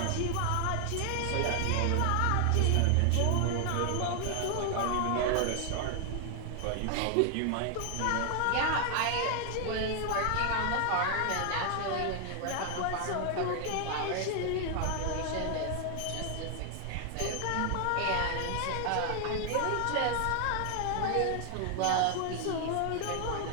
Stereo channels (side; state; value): both; different; correlation 0.00